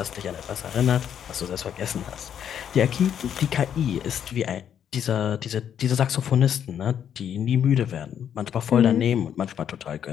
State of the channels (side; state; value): right; quieter; 9.0 dB